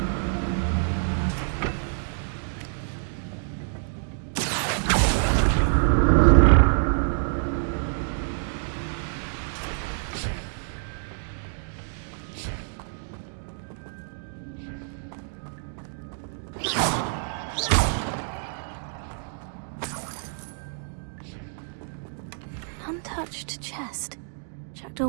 Untouched chest. Jackdaw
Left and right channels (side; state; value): left; silent; 60 dB below the other